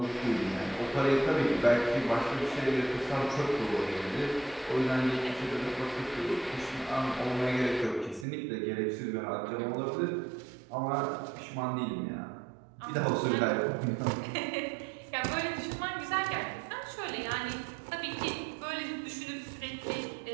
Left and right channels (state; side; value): drops out; left; at 8.2 s